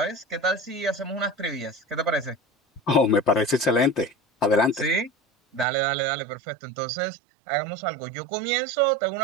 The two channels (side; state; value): left; drops out; at 5.7 s